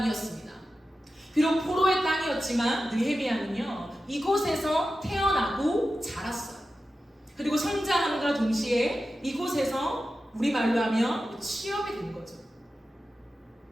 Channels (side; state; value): both; normal; correlation 0.92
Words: 비록 포로의 땅이었지만 느헤미야는요, 이곳에서 태어나고 자랐어요. 그리고 성장함과 동시에 이곳에서 우리말로 하면 취업이 된 거죠.